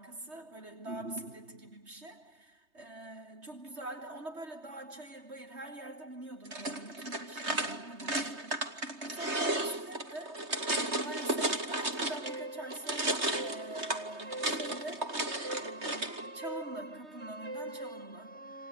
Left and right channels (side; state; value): left; late; 3.2 ms